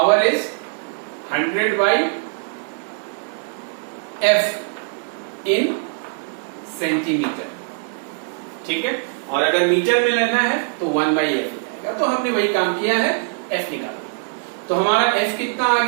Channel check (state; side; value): silent; left; digital silence